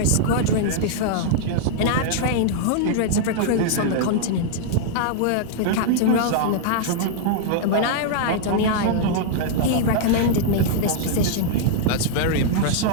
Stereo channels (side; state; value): both; different; correlation -0.01